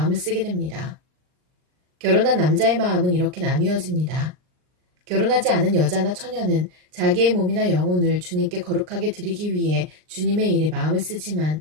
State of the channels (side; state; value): left; late; 39 ms